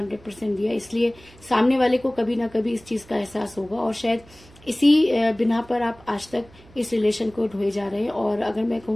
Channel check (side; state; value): right; noise; hum, 25 dB below the sound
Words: दिया, इसलिए सामने वाले को कभी ना कभी इस चीज का एहसास होगा और शायद इसी बिना पर आप आज तक इस रिलेशन को ढोए जा रहे हैं। और अगर मैं